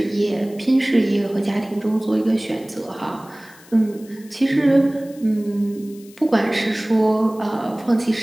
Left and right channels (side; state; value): left; noise; hiss, 24 dB below the sound